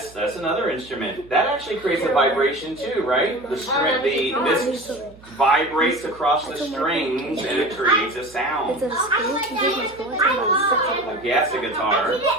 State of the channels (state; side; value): noise; right; hum, 23 dB below the sound